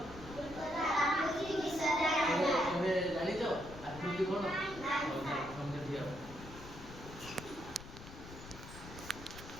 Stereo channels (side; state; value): left; noise; rumble, 14 dB below the sound